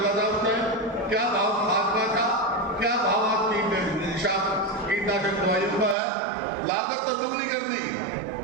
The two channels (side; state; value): left; drops out; at 6.0 s